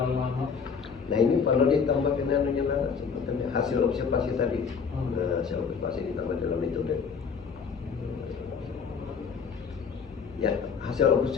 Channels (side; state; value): right; quieter; 6.0 dB